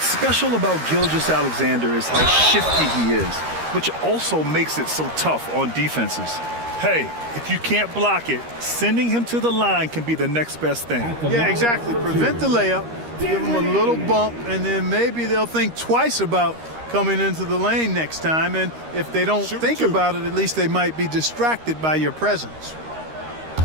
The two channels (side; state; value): left; late; 13 ms